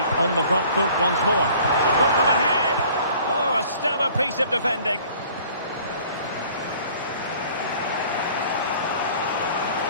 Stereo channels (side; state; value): both; inverted; correlation -0.52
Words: on the front foot once more. To put them ahead. Oh, a stellar piece of defending.